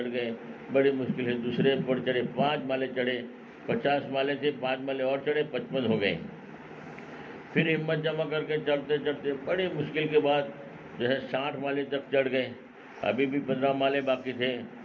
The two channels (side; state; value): both; identical; correlation 1.00